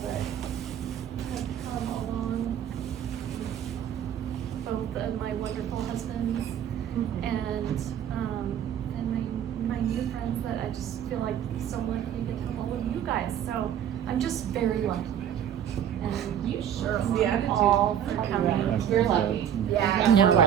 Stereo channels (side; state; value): left; quieter; 9.6 dB